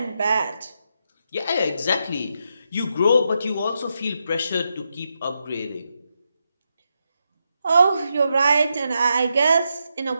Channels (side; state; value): both; inverted; correlation -0.84